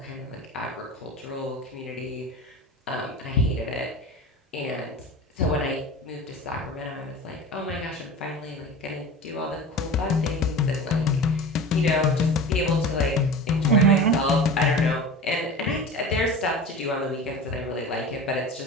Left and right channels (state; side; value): normal; both; correlation 0.33